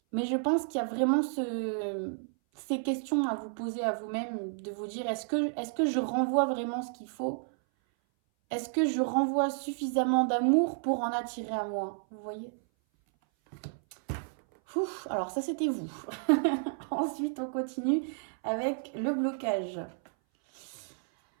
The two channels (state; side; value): silent; left; 57 dB below the other